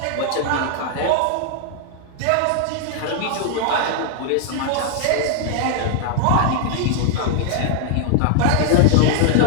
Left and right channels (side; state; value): both; different; correlation 0.00